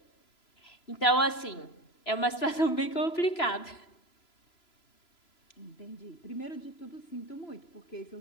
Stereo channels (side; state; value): right; late; 3.0 ms